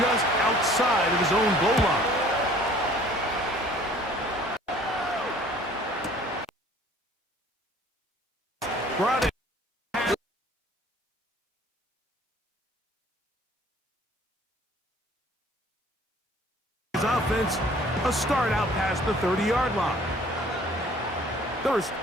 outside of his own goal line. Brought it. His offense, a start out past the 30-yard line. 1st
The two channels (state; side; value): normal; both; correlation 0.53